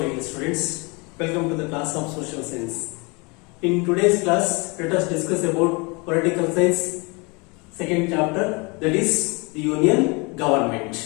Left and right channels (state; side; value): quieter; right; 28.8 dB